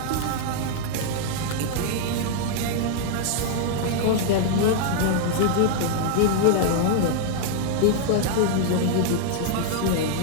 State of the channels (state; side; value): different; both; correlation -0.01